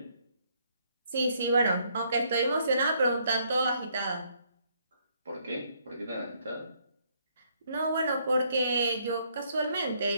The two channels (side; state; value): both; inverted; correlation -0.69